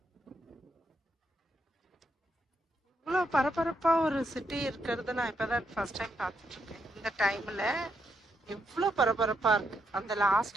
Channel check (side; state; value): both; normal; correlation 0.79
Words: இவ்வளோ பரபரப்பா ஒரு சிட்டி இருக்கிறது நான் இப்பதான் ஃபர்ஸ்ட் டைம் பார்த்துட்டு இருக்கேன். இந்த டைம்ல எவ்வளோ பரபரப்பா இருக்கு. அந்த